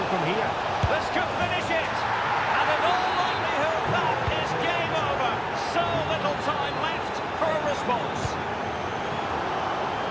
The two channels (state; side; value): identical; both; correlation 1.00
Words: from here? This could finish it. And in all likelihood, that is game over. So little time left for a response.